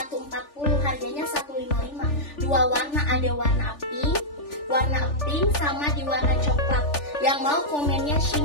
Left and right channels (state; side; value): late; right; 3.4 ms